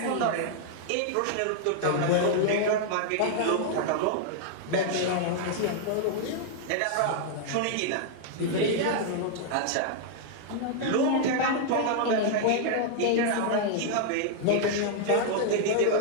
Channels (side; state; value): both; different; correlation 0.00